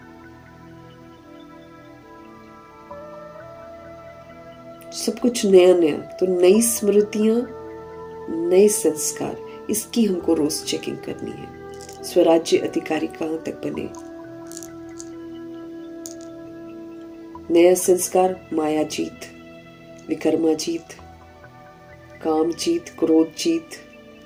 सब कुछ नया नया, तो नई स्मृतियां, नए संस्कार, इसकी हमको रोज चेकिंग करनी है। स्वराज्य अधिकारी कहां तक बने। नया संस्कार, माया जीत, विकर्मा जीत, काम जीत, क्रोध जीत,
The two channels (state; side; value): identical; both; correlation 1.00